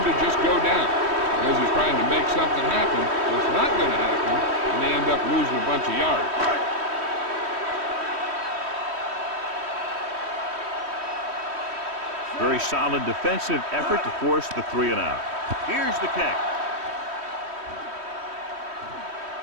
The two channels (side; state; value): left; late; 3.1 ms